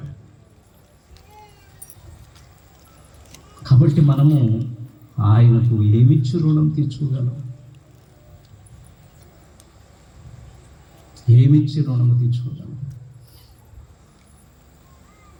కాబట్టి మనము ఆయనకు ఏమిచ్చి రుణం తీర్చుకోగలం? ఏమిచ్చి రుణము తీర్చుకోగలం?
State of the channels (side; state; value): both; identical; correlation 1.00